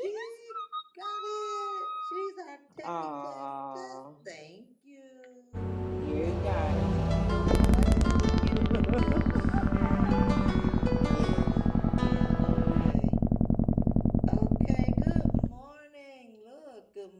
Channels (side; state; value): both; identical; correlation 1.00